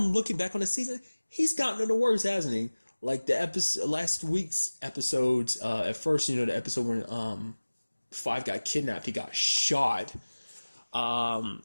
looking back on the season, he's gotten it the worst, hasn't he? Like the last week's episodes. At first, you know, the episode when Five got kidnapped, he got shot. But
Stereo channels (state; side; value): inverted; both; correlation -1.00